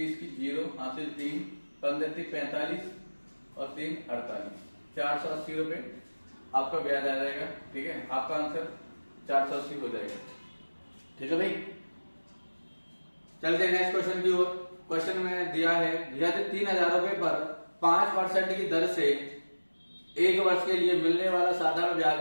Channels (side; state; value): both; inverted; correlation -1.00